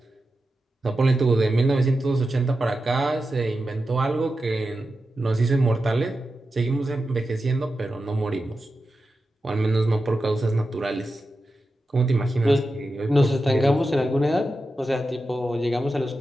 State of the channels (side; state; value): both; normal; correlation 0.91